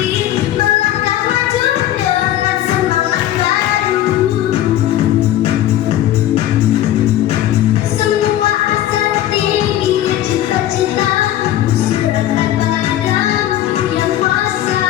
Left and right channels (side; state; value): right; quieter; 12.8 dB